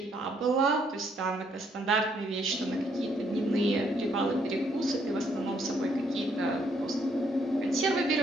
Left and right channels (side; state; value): both; normal; correlation 0.70